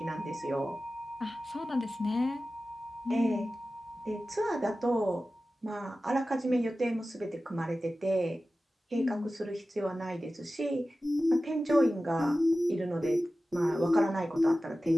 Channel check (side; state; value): both; normal; correlation 0.95